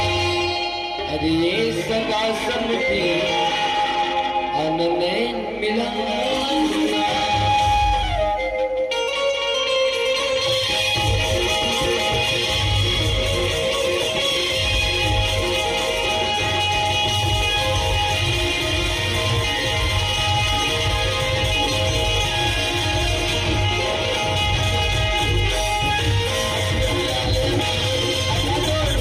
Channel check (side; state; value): both; identical; correlation 1.00